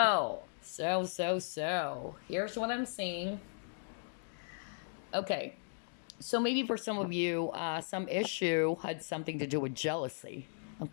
Here's what I'm seeing. Okay. So maybe for some of you, some issue had something to do with jealousy.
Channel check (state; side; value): silent; right; digital silence